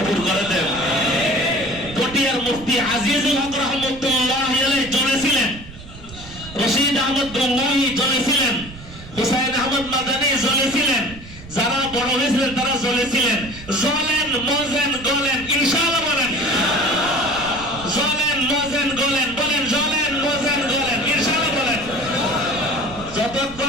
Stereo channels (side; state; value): right; noise; rumble, 16 dB below the sound